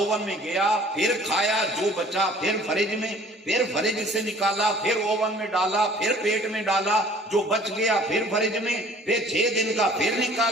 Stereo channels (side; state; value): both; normal; correlation 0.52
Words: میں گیا، پھر کھایا جو بچا، پھر فریج میں، پھر فریج سے نکالا، پھر اوون میں ڈالا، پھر پیٹ میں ڈالا، جو بچ گیا پھر فریج میں، پھر 6 دن کا پھر